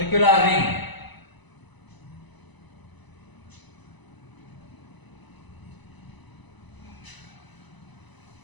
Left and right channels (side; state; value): right; late; 1.0 ms